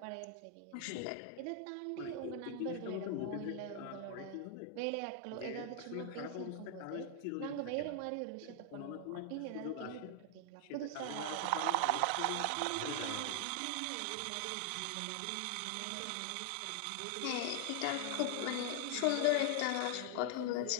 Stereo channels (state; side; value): different; both; correlation 0.00